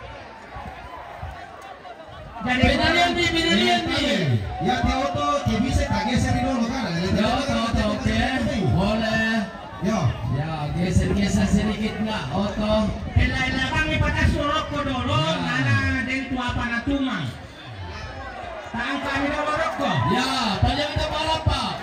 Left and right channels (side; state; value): both; identical; correlation 1.00